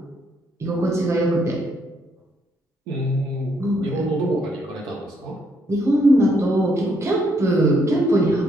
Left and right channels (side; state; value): both; normal; correlation 0.73